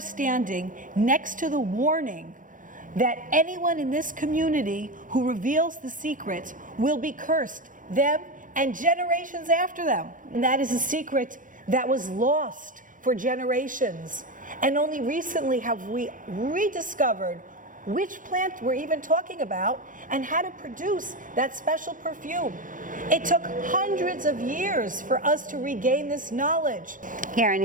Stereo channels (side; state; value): left; late; 0.38 ms